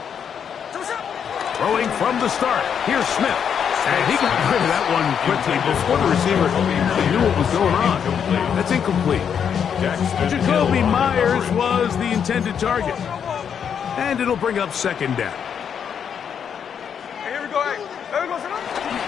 Throwing from the start. Here's Smith. And he got rid of that one quickly before the receiver knew what was going on. That's incomplete. Jacoby Myers was the intended target. And it'll bring up 2nd down. Here we go.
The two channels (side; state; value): right; quieter; 7.7 dB